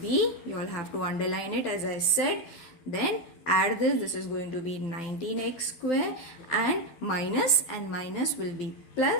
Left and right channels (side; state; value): right; late; 12 ms